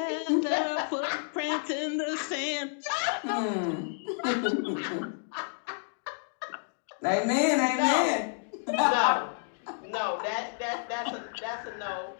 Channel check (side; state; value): right; silent; digital silence